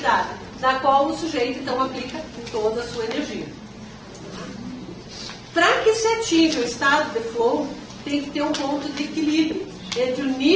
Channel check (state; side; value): identical; both; correlation 1.00